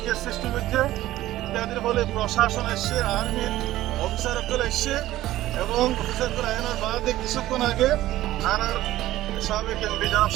সৃষ্টি করছে ইত্যাদির ফলে প্রশাসন এসছে, আর্মির অফিসারগুলো এসছে এবং অফিসারগুলো আইনের বাদে কিছুক্ষণ আগে আর সাবেক এমপি জনাব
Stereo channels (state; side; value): quieter; left; 15.1 dB